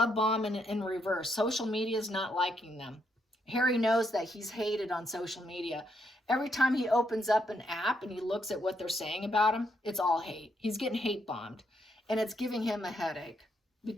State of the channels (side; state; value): both; normal; correlation 0.76